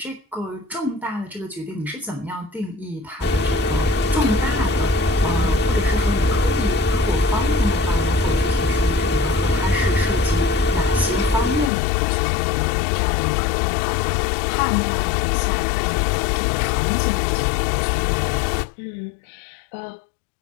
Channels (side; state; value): right; drops out; at 11.7 s